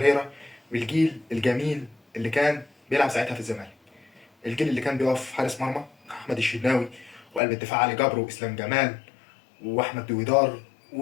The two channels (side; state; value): right; drops out; at 7.4 s